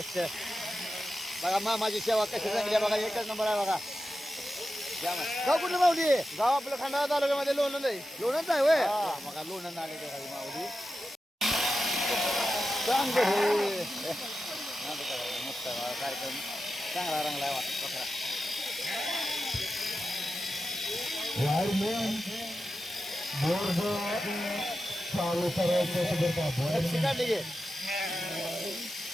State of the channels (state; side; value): normal; both; correlation 0.91